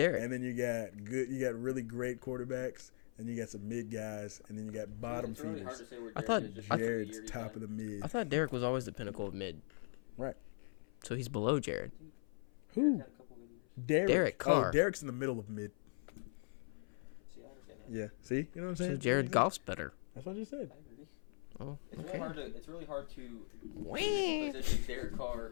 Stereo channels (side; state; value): right; silent; 51 dB below the other